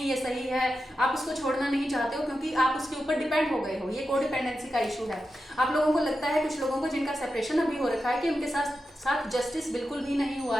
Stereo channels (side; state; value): both; normal; correlation 0.90